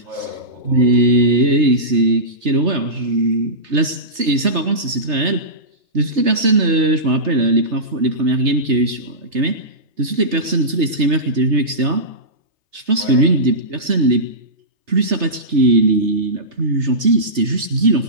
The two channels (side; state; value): left; late; 3.3 ms